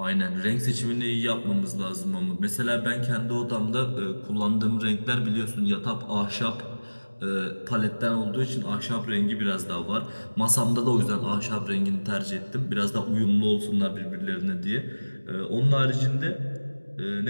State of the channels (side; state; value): both; inverted; correlation -1.00